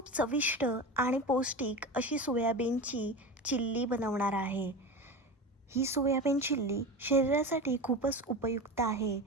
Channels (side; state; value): both; normal; correlation 0.27